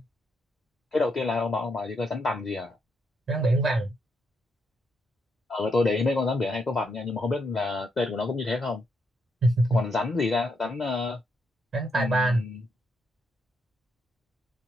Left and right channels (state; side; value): normal; both; correlation 0.78